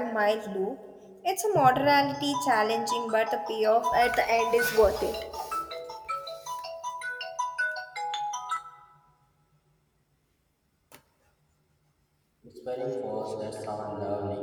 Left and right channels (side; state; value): both; identical; correlation 1.00